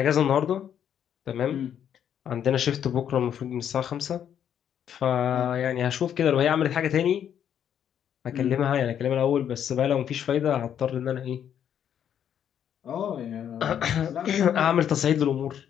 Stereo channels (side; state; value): right; quieter; 9.3 dB